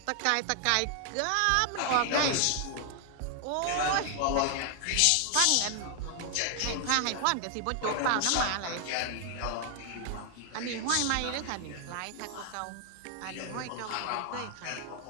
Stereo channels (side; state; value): both; different; correlation 0.00